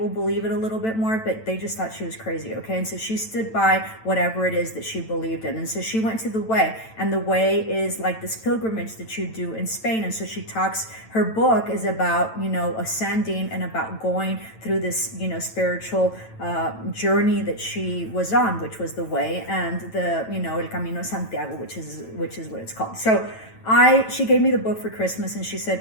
believe it a little bit more, but they just thought she was crazy. Okay. And so she stood by whatever it is that she believed in. And so she went to the way, and the way is like this pilgrimage that you do in Spain. And so she talks, her book is about, ascending and about going through this, spiritual journey that she was on, which was the way, and the, El Camino Santiago, which is what it's called. So she gave me the book for Christmas, and she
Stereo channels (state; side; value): late; right; 9.0 ms